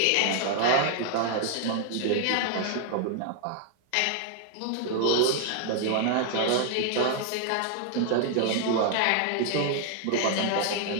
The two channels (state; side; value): different; both; correlation 0.00